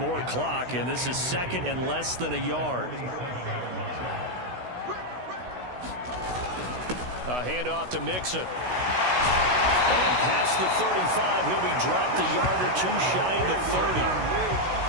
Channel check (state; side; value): late; left; 16 ms